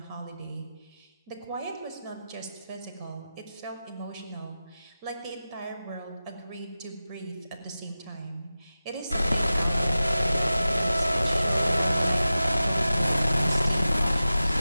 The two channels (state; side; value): inverted; both; correlation -0.94